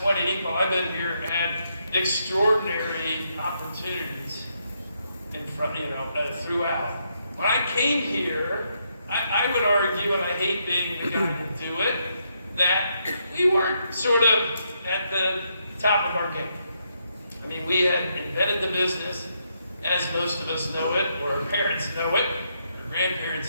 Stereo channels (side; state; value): both; inverted; correlation -0.78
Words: while I've been here, had extraordinary opportunities in front, throughout. When I came here, I would argue, and I hate being the guy to do it, that we weren't sort of at the top of our game. I mean, we had invented the business as most of us know it, or our parents know it, our